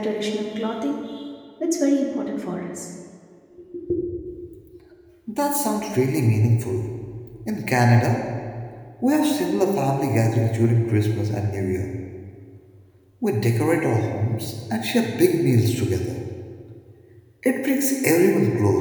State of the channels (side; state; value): both; identical; correlation 1.00